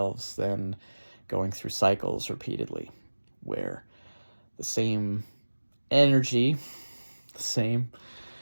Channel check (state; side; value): inverted; both; correlation -1.00